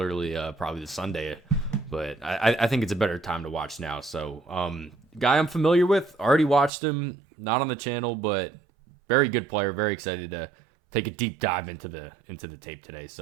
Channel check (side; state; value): left; drops out; at 6.7 s